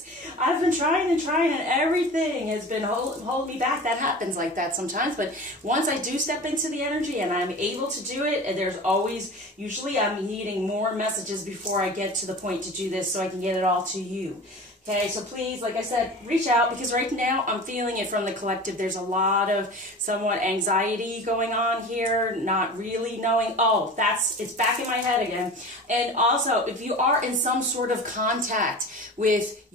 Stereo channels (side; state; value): both; normal; correlation 0.36